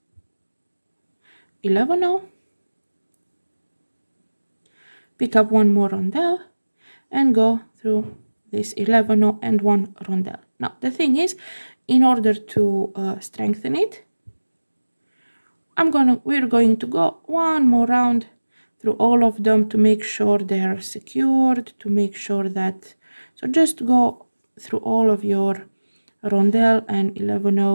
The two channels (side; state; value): both; inverted; correlation -1.00